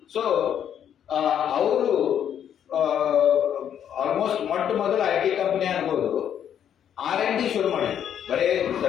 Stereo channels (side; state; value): right; quieter; 9.3 dB